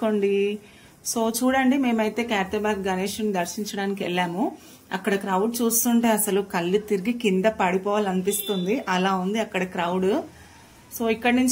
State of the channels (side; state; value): both; identical; correlation 1.00